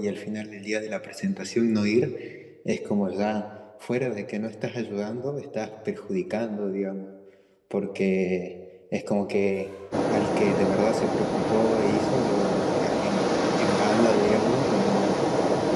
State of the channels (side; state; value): both; identical; correlation 1.00